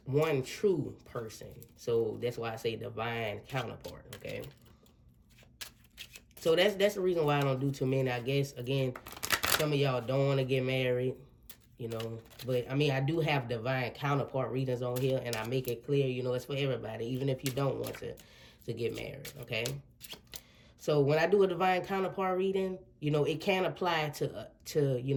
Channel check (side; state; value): both; identical; correlation 1.00